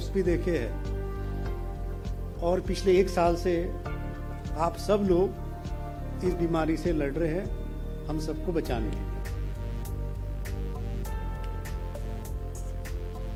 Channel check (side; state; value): both; identical; correlation 1.00